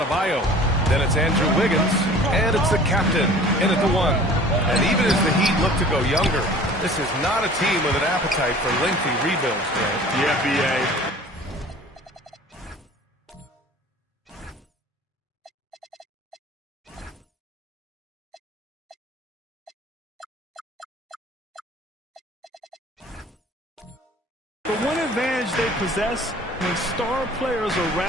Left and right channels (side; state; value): both; normal; correlation 0.46